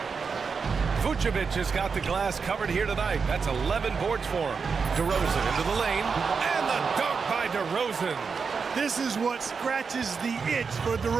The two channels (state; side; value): quieter; left; 5.4 dB